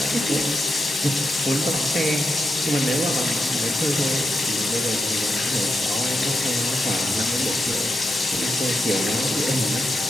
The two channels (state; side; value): normal; both; correlation 0.86